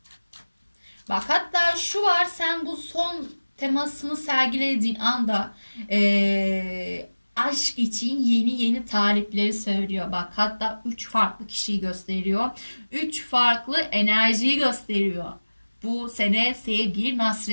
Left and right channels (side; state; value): both; inverted; correlation -1.00